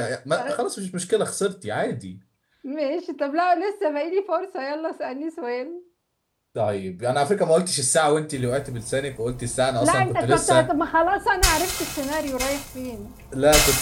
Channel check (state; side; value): identical; both; correlation 1.00